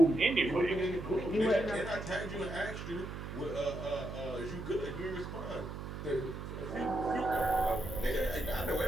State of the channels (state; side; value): noise; right; hum, 8 dB below the sound